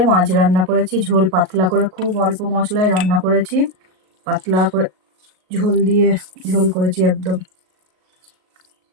মাছ রান্না করেছি, ঝোল পাতলা করে, খুব অল্প মশলায় রান্না করেছি। পাতলা করে ঝোল দিয়ে ঝোল করেছি একদম।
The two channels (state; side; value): late; left; 38 ms